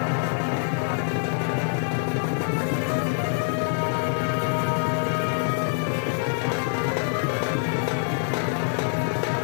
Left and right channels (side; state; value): right; silent; digital silence